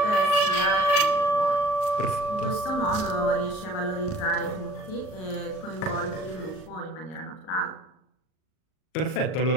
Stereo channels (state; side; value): late; right; 38 ms